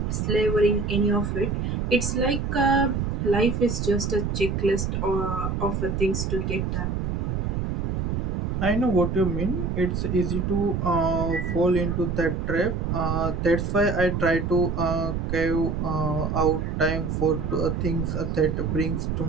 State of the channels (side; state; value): right; noise; rumble, 1 dB below the sound